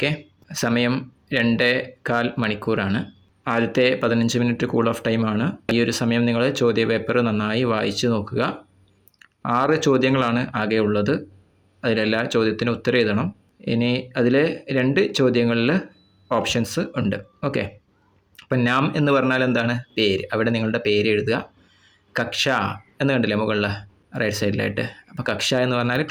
സമയം 2.25 മണിക്കൂറാണ്. ആദ്യത്തെ 15 മിനിറ്റ് കൂൾ ഓഫ് ടൈമാണ്. ഈ ഒരു സമയം നിങ്ങൾ ചോദ്യ പേപ്പർ നന്നായി വായിച്ചു നോക്കുക. 6 ചോദ്യങ്ങളാണ് ആകെ ഉള്ളത്. അതിലെല്ലാ ചോദ്യത്തിനും ഉത്തരം എഴുതണം. ഇനി അതിൽ 2 ചോദ്യങ്ങളിൽ ഓപ്ഷൻസ് ഉണ്ട്. ഓക്കെ, അപ്പം നാം എന്ന് പറഞ്ഞാൽ എന്താണ്? പേര്. അവിടെ നിങ്ങളുടെ പേര് എഴുതുക. കക്ഷ എന്ന് കണ്ടില്ലേ മുകളിൽ റൈറ്റ് സൈഡിലായിട്ട്? അപ്പോൾ കക്ഷ എന്ന് പറഞ്ഞാൽ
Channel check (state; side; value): identical; both; correlation 1.00